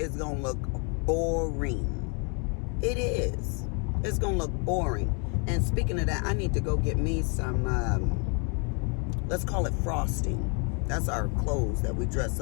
going to look boring. It is. It's going to look boring. And speaking of that, I need to go get me some, let's call it frosting. That's our clothes that we dress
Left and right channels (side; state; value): right; quieter; 36.2 dB